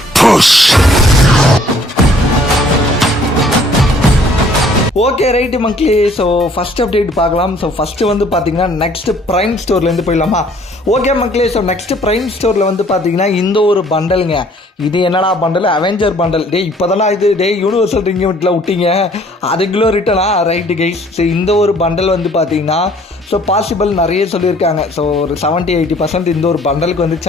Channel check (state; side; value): normal; both; correlation 0.59